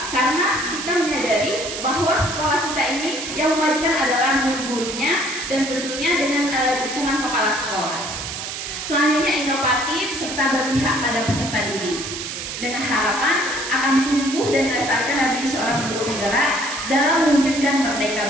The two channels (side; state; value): right; noise; hiss, 6 dB below the sound